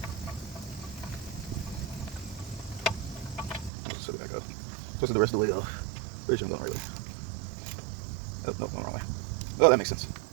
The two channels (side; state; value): left; drops out; at 3.7 s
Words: Just set it back up. Twist it the rest of the way off. Pretty sure I'm going right way. Oh, nope, going the wrong way. Oh, that makes sense.